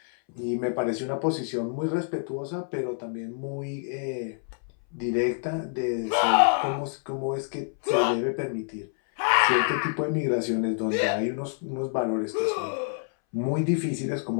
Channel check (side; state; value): right; silent; 60 dB below the other